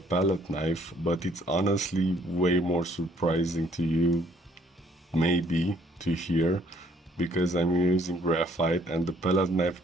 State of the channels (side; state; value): both; normal; correlation 0.63